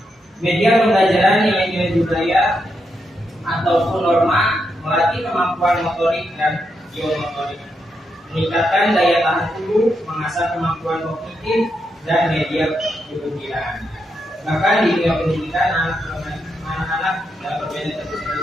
Media pembelajaran nilai-nilai budaya ataupun norma melatih kemampuan motorik dan geomotorik, meningkatkan daya tahan tubuh, mengasah kemampuan kognitif dan media pembelajaran. Bahkan di dunia pendidikan, anak-anak dalam permainan tradisional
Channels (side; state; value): both; normal; correlation 0.82